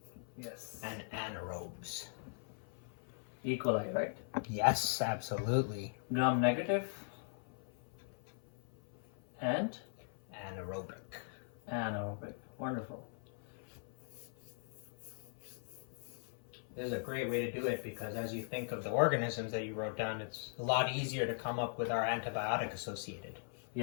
Yes. and anaerobes. E. coli, right? Yes, absolutely. Gram-negative and Anaerobic. anaerobic. Wonderful. This is a great way to do it because as you think of the organisms that you wrote down, it's a lot easier to come up with our antibiotic associated.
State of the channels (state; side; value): silent; right; 51 dB below the other